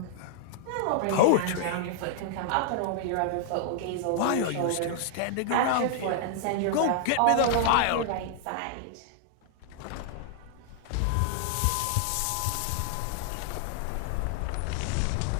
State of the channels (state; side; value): different; both; correlation 0.00